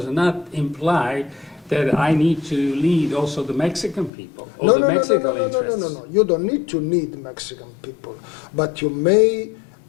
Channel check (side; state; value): right; drops out; at 4.1 s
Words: not imply that I need to lead also the Mexican people or the Mexican interests. No. You don't need to lead Mexican people, but you may